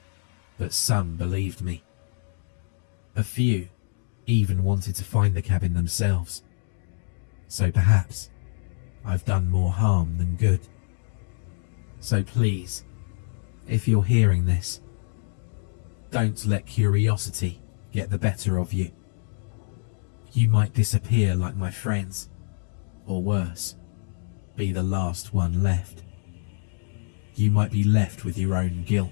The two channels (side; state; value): right; silent; digital silence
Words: but some believed me. A few even wanted to find the cabin themselves. So perhaps I've done more harm than good. So please, if you're hearing this, don't let curiosity get the better of you. You might disappear like my friends, or worse, be the last one left. You might be left with your own